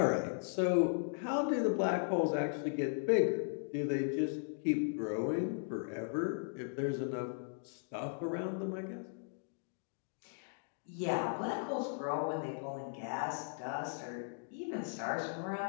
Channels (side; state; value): right; silent; digital silence